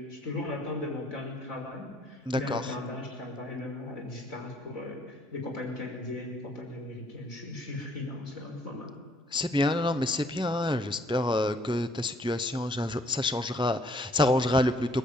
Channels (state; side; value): normal; both; correlation 0.64